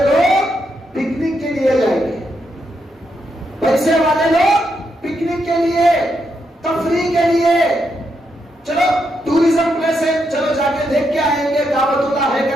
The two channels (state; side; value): normal; both; correlation 0.81